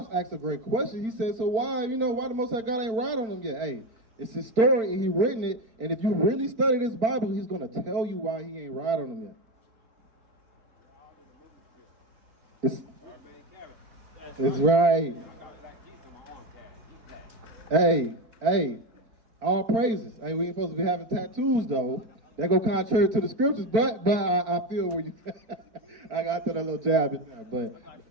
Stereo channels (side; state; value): left; late; 4.4 ms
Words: asked a great question. He said, so why the Most High God ain't write on them yet? Hey, it's his story and he written it. And if you really study this Bible, he's going to tell you why he ain't write on them yet. It's right. Hey, all praises. Hey, we ain't supposed to be having tattoos though. That go contrary to the scriptures, but I feel where you. I got that a little jab in there,